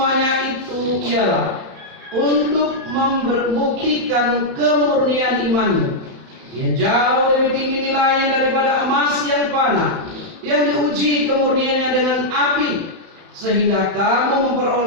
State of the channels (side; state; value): left; late; 31 ms